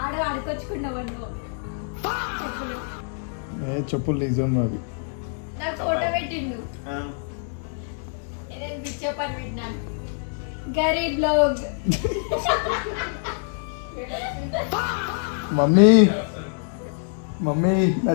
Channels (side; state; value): right; silent; 62 dB below the other